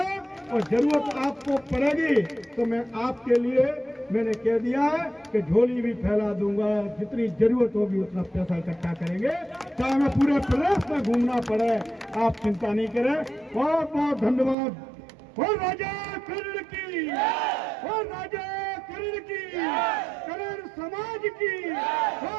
और जरूरत आपको पड़ेगी तो मैं आपके लिए मैंने कह दिया है कि झोली भी फैला दूंगा, जितनी जरूरत होगी उतना पैसा इकट्ठा करेंगे, चाहे मैं पूरे प्रदेश में घूमना पड़े, आप चिंता नहीं करें। बहुत बहुत धन्यवाद। और राजा कर्ण की, और राजा कर्ण की, कर्ण समाज की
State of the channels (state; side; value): drops out; left; at 14.6 s